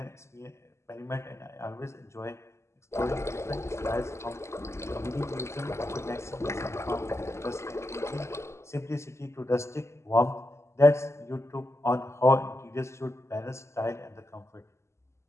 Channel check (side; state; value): right; late; 0.13 ms